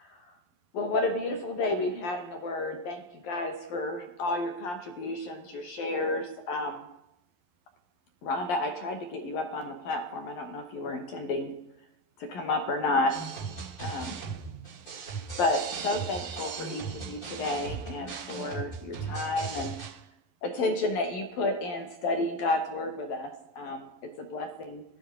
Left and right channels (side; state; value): right; late; 11 ms